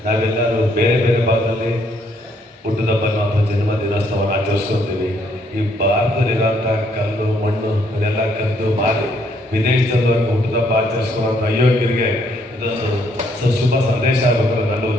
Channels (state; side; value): normal; both; correlation 0.69